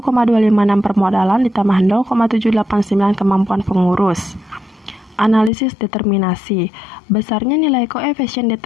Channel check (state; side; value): drops out; right; at 5.5 s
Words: permodalan ditambah 0,789 kemampuan pengurus. Analisis determinasi. Besarnya nilai koefisien